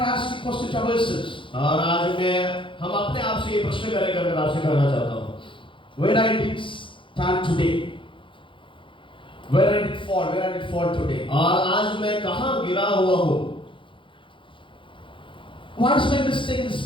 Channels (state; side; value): late; right; 0.25 ms